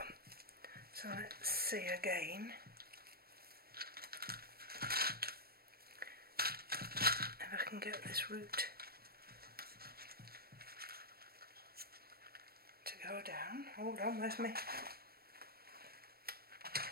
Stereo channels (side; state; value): left; late; 0.44 ms